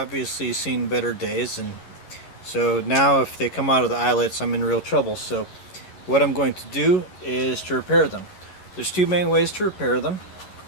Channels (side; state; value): right; late; 11 ms